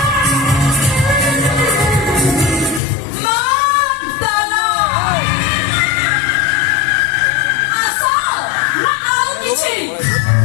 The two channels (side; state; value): right; drops out; at 2.8 s